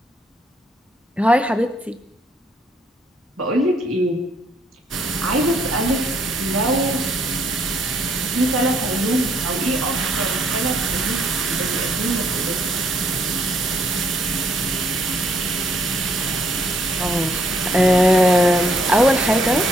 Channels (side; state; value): both; normal; correlation 0.68